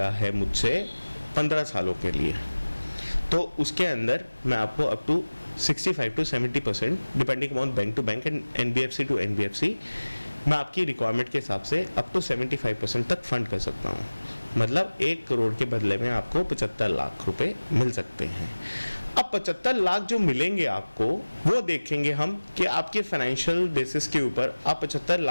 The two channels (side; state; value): both; inverted; correlation -1.00